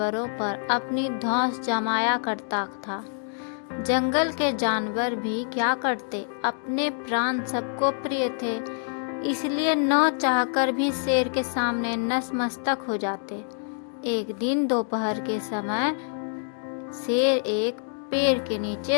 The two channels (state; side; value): silent; right; digital silence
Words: पर अपनी धौंस जमाया करता था। जंगल के जानवर भी क्या करते, अपने प्राण सबको प्रिय थे, इसलिए न चाहकर भी शेर के सामने नतमस्तक हो जाते। एक दिन दोपहर के समय शेर एक पेड़ के